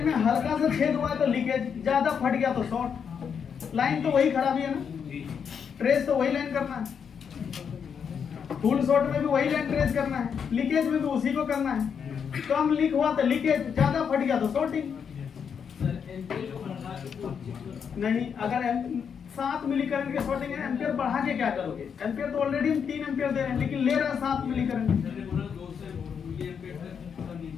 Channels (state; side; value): quieter; right; 7.0 dB